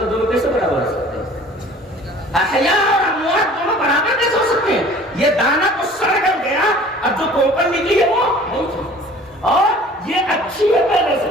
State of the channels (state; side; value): normal; both; correlation 0.48